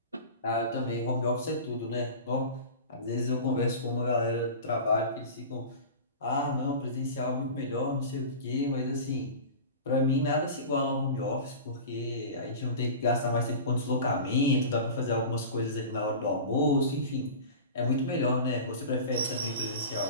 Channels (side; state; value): both; inverted; correlation -0.33